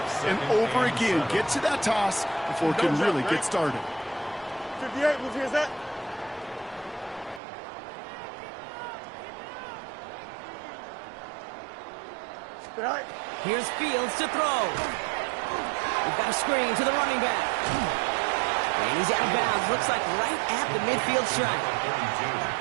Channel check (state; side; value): drops out; left; at 7.4 s